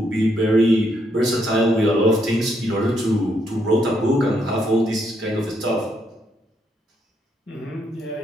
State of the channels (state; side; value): normal; both; correlation 0.75